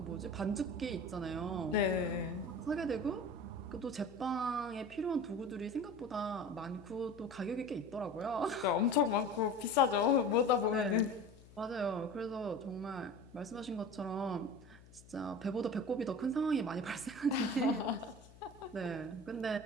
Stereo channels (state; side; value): noise; left; hum, 22 dB below the sound